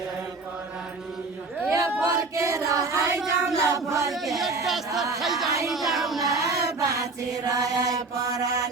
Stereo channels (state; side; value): quieter; left; 3.8 dB